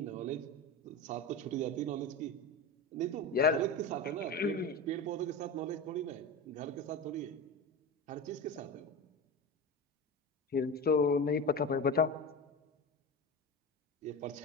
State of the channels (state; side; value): normal; both; correlation 0.25